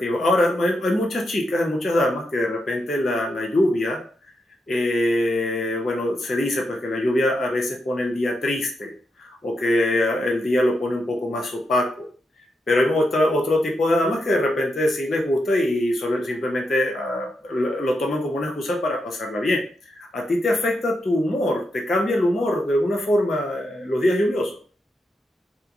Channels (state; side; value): normal; both; correlation 0.84